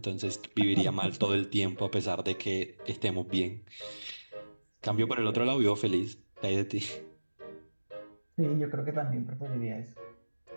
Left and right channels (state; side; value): inverted; both; correlation -1.00